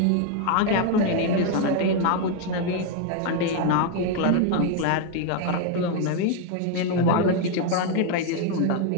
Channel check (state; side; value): different; both; correlation 0.01